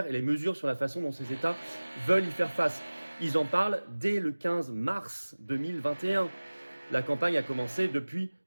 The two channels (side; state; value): both; inverted; correlation -1.00